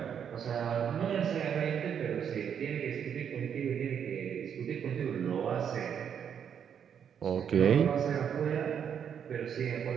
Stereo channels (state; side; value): quieter; left; 8.1 dB